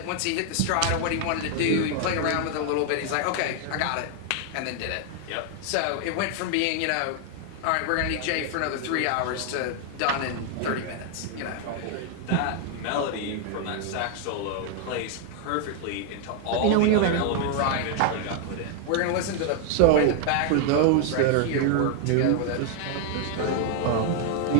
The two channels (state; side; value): different; both; correlation 0.00